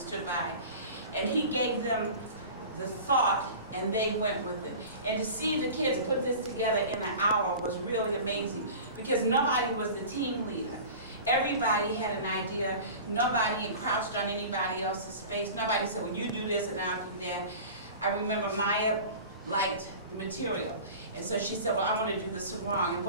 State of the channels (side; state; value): both; inverted; correlation -0.37